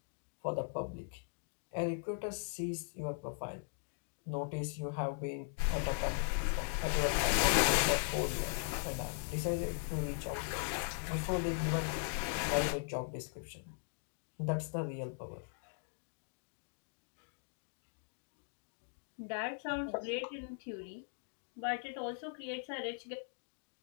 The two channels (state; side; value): silent; right; digital silence